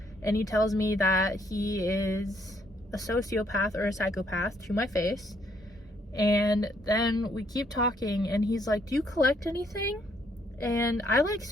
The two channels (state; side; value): normal; both; correlation 0.70